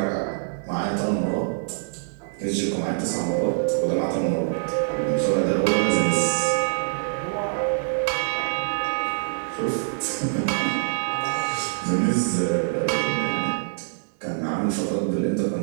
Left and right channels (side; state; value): left; silent; digital silence